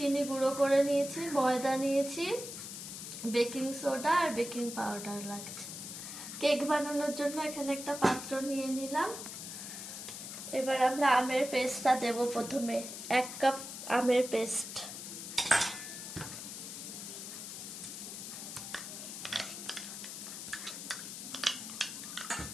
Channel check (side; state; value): left; noise; hiss, 9 dB below the sound